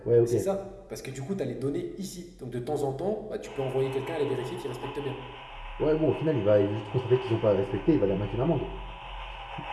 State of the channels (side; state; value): both; identical; correlation 1.00